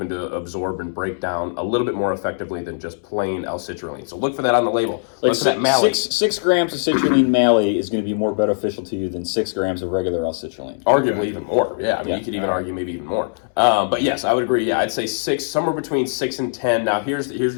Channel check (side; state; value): right; silent; 65 dB below the other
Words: to absorb and break down a little bit more effectively than just plain L-citrulline. So look for that on the label. Like Look for that malate. 6 grams of citrulline malate is going to be more beneficial to you than 6 grams of regular L-citrulline. Arguably even more. Yeah, I mean, Yeah. you could even argue maybe even more. But yes, I would agree. Yeah, I'd say 6, somewhere between 6 and 10. Now, here's